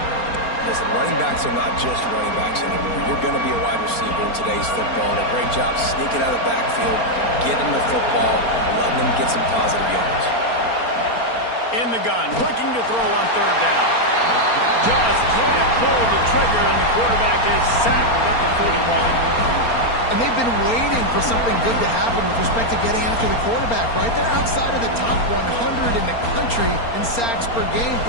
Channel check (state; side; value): late; right; 4.3 ms